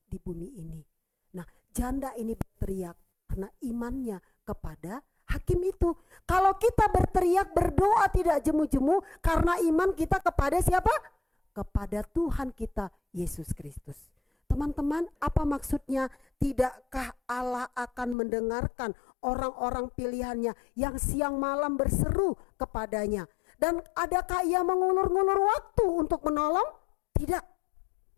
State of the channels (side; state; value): right; drops out; at 18.2 s